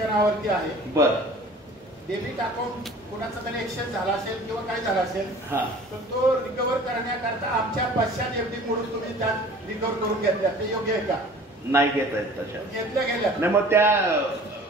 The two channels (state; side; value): normal; both; correlation 0.46